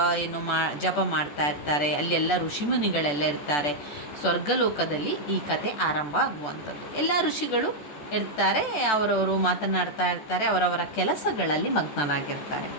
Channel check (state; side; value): late; right; 14 ms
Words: ಜಪ ಮಾಡ್ತಾ ಇರ್ತಾರೆ. ಅಲ್ಲೆಲ್ಲ ಋಷಿಮುನಿಗಳೆಲ್ಲ ಇರ್ತಾರೆ. ಸ್ವರ್ಗಲೋಕದಲ್ಲಿ ಈ ಕತೆ ಆರಂಭ ಆಗುವಂಥದ್ದು. ಎಲ್ಲ ಋಷಿಗಳು ಇರ್ತಾರೆ, ಅವರವರು ಮಾತನಾಡ್ತಾ ಇರ್ತಾರೆ, ಅವರವರ ಕೆಲಸಗಳಲ್ಲಿ ಮಗ್ನರಾಗಿರ್ತಾರೆ.